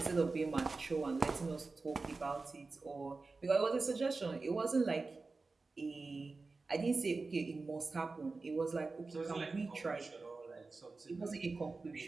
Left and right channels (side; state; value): left; quieter; 3.8 dB